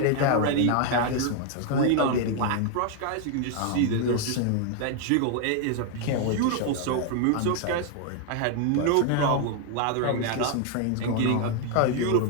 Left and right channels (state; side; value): different; both; correlation 0.00